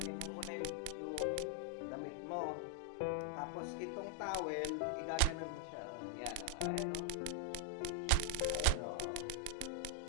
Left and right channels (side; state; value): both; different; correlation 0.00